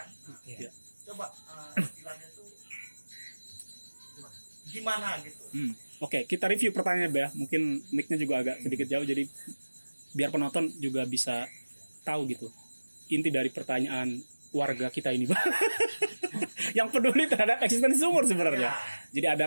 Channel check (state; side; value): inverted; both; correlation -1.00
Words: Coba istilahnya tuh gimana gitu. Oke, kita review pertanyaannya, Bah. Mungkin mic-nya juga agak sedikit jauh, jadi biar penonton juga bisa tahu gitu inti dari pertanyaan warga kita ini, Bah. Yang peduli terhadap eksistensi sumur sebenarnya. Jadi